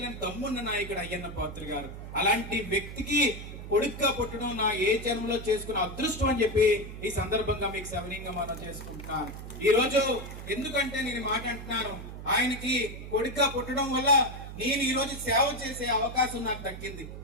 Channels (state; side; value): noise; right; hum, 10 dB below the sound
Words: దమ్మున్న నాయకుడు అయ్యన్న పాత్ర గారు. అలాంటి వ్యక్తికి కొడుగ్గా పుట్టడం నా ఏ జన్మలో చేసుకున్న అదృష్టం అని చెప్పి ఈ సందర్భంగా మీకు సవినీయంగా మనం చేసుకుంటున్నాను. ఈ రోజు ఎందుకంటే నేను మాట అంటున్నాను, ఆయనకి కొడుగ్గా పుట్టడం వల్ల నేను ఈ రోజు సేవ చేసే అవకాశం నాకు దక్కింది.